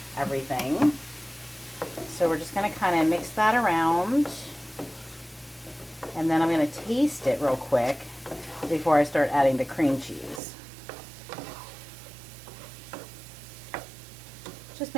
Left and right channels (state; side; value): drops out; left; at 10.4 s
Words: everything. So we're just going to kind of mix that around. And then I'm going to taste it real quick before I start adding the cream cheese. Just